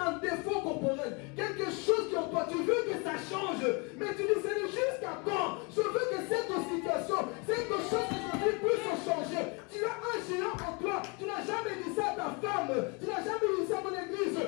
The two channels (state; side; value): quieter; right; 31.4 dB